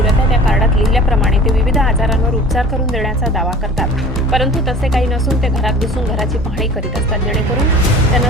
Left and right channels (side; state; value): both; normal; correlation 0.43